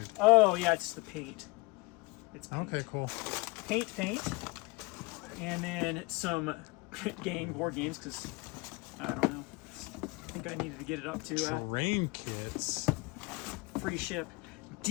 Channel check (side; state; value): right; quieter; 25.2 dB